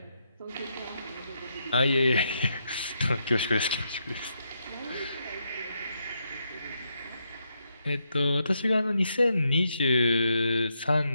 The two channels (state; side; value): inverted; both; correlation -0.80